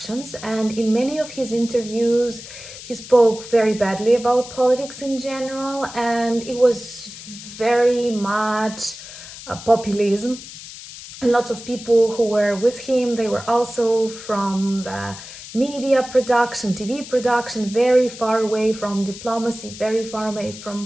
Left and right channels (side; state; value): left; noise; hiss, 14 dB below the sound